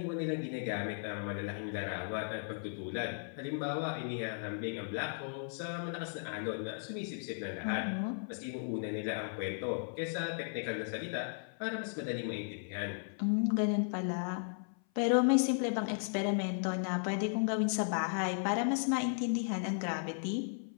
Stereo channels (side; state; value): right; silent; 54 dB below the other